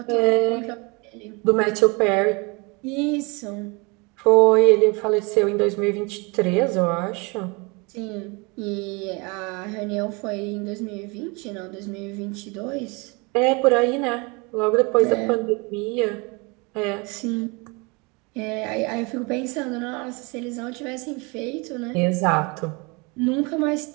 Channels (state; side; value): quieter; left; 28.7 dB